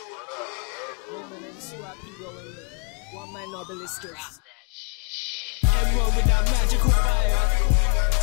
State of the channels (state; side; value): quieter; right; 31.9 dB